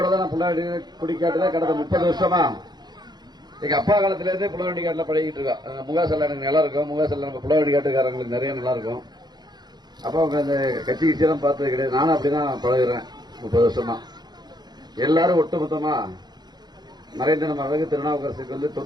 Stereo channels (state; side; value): late; left; 0.20 ms